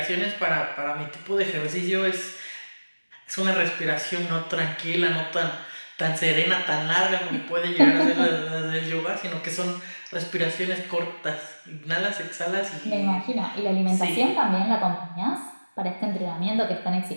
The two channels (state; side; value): inverted; both; correlation -1.00